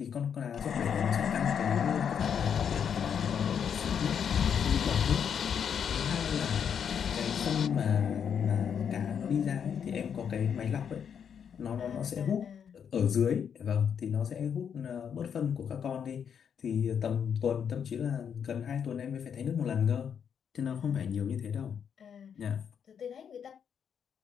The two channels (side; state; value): right; quieter; 7.7 dB